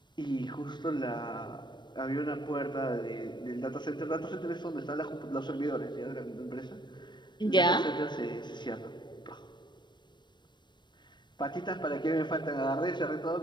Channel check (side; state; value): right; late; 0.22 ms